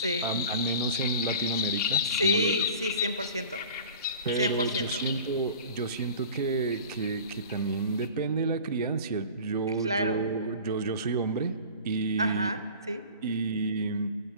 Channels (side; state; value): both; inverted; correlation -0.40